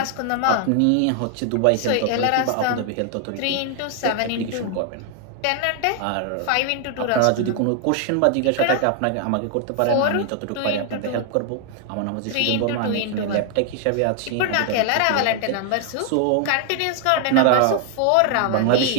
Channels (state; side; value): different; both; correlation 0.00